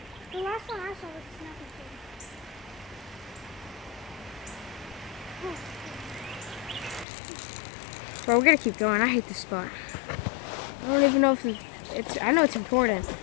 The last one I saw was a snapping turtle. Bro, we're gonna keep going. I hate this spot. I don't even know if it's. I know it's important.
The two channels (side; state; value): right; drops out; at 7.1 s